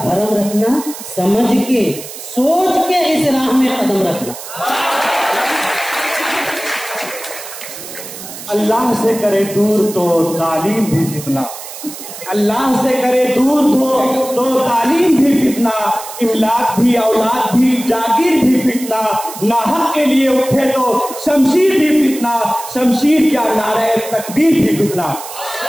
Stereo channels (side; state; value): right; noise; hiss, 12 dB below the sound